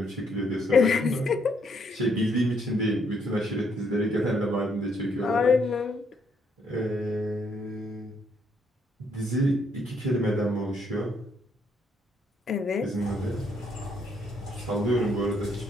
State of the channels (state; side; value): normal; both; correlation 0.71